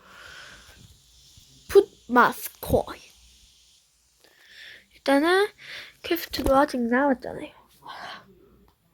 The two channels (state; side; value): identical; both; correlation 1.00